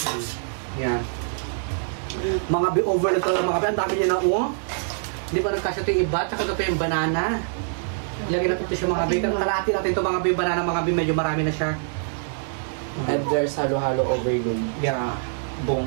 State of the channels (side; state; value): left; silent; digital silence